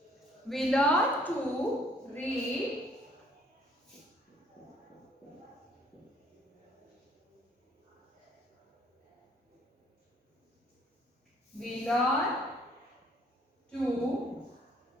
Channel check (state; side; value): normal; both; correlation 0.62